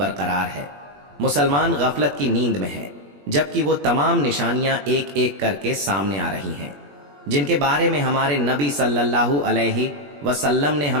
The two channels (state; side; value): late; left; 21 ms